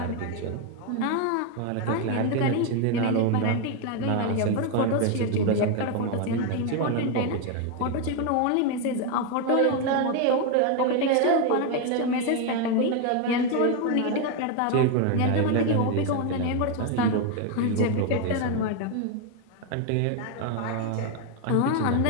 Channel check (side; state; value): both; different; correlation 0.01